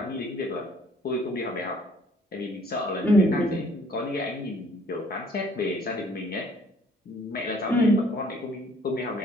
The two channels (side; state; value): both; normal; correlation 0.59